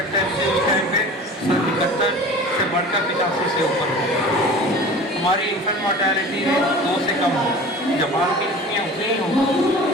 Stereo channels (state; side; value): normal; both; correlation 0.39